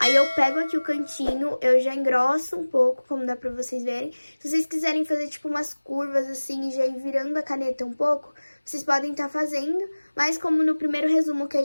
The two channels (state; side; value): inverted; both; correlation -1.00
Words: eu pego aqui o cantinho, eu já engrosso um pouco, como dá pra vocês verem. Se vocês quiserem fazer, tipo, umas curvas assim e já ir virando a caneta um pouco, vocês podem estar fazendo. Mas como no primeiro resumo que a